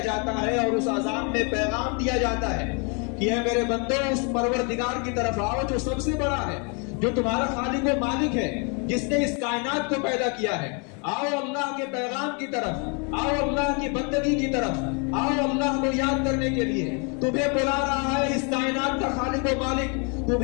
جاتا ہے اور اس اذان میں پیغام دیا جاتا ہے کہ اے میرے بندو، اس پروردگار کی طرف آؤ جو سب سے بڑا ہے، جو تمہارا خالق و مالک ہے، جس نے اس کائنات کو پیدا کیا ہے۔ آؤ اللہ کے پیغام کی طرف، آؤ اللہ کی بندگی کی طرف، آؤ اللہ کو یاد کرنے کے لیے۔ تمہیں بلا رہا ہے اس کائنات کا خالق و مالک،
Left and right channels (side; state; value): right; quieter; 35.4 dB